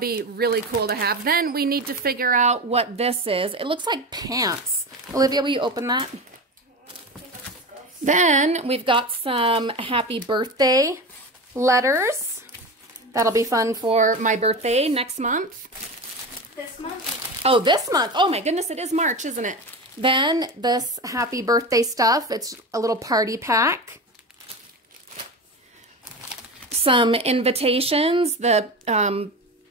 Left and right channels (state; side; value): normal; both; correlation 0.25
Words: really cool to have. Then we need to figure out what this is. It looks like pants. Olivia, will you open that? Then we've got some happy birthday letters. That'll be fun for my birthday next month. This month? Oh, this month. Oh my goodness, it is March, isn't it? Then this happy birthday stuff. It's a little party pack. Some invitations. The